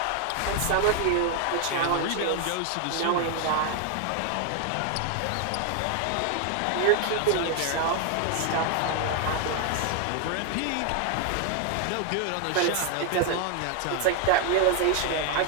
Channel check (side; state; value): both; different; correlation 0.00